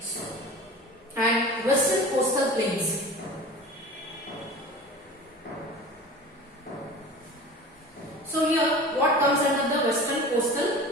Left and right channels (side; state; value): both; normal; correlation 0.37